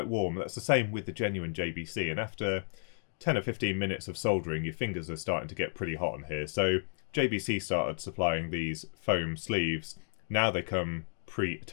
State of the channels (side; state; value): right; silent; digital silence